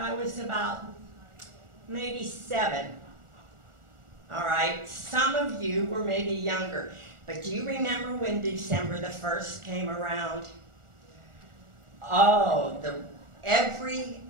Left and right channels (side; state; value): left; late; 1.4 ms